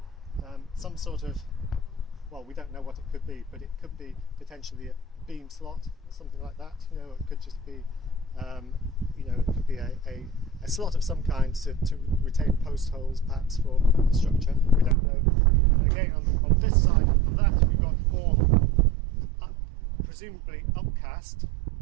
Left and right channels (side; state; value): left; drops out; at 15.0 s